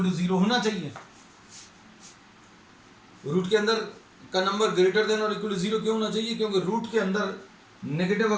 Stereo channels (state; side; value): identical; both; correlation 1.00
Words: टू 0 होना चाहिए। रूट के अंदर का नंबर ग्रेटर देन और इक्वल टू 0 क्यों होना चाहिए, क्योंकि रूट के अंदर नेगेटिव